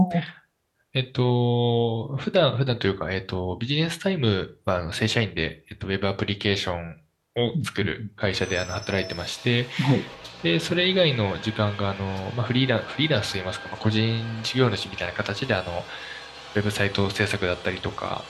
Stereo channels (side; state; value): both; identical; correlation 1.00